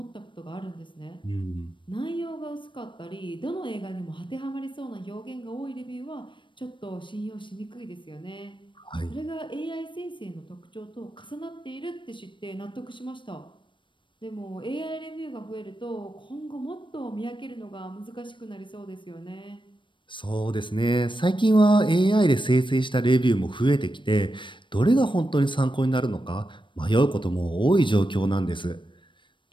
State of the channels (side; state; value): right; late; 0.24 ms